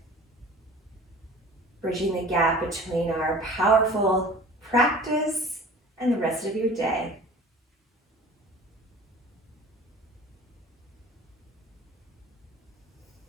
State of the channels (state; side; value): normal; both; correlation 0.43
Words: bridging the gap between our powerful practice and the rest of your day.